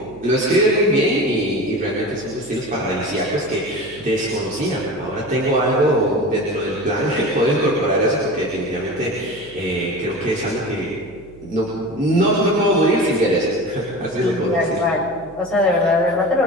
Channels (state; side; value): noise; right; hum, 22 dB below the sound